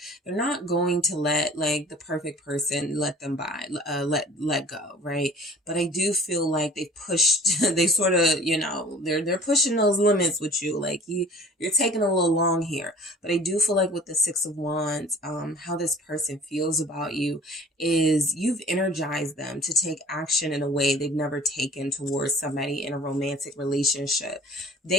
They're not going to let like the perfect person let them by, let go, right? But I do feel like they pushed, they sort of, you know, they're pushing those limits with you. Like you're taking a little long here. But I do feel like with the Six of Wands, how this person feels about you is you've energized them to take action in a way they've never taken towards somebody in a romantic relationship.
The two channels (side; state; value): both; normal; correlation 0.47